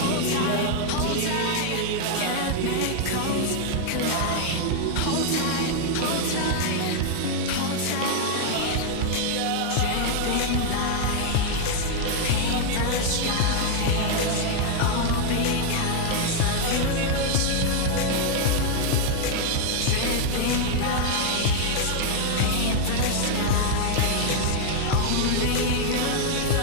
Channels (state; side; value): different; both; correlation 0.00